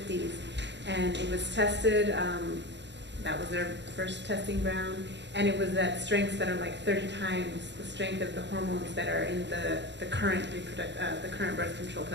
And it was tested, that was their first testing ground, and it was at strengths that are like 30 times the strength of the hormones that are in the current birth control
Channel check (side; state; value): left; late; 0.52 ms